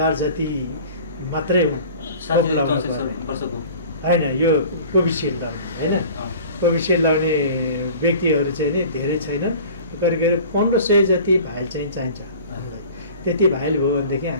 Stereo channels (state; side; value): inverted; both; correlation -0.44